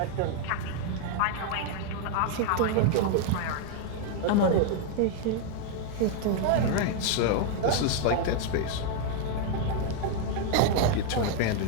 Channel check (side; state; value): both; different; correlation 0.00